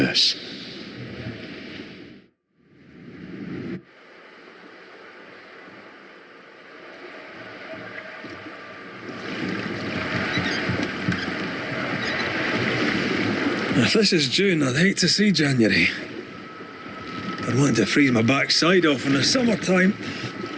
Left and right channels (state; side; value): identical; both; correlation 1.00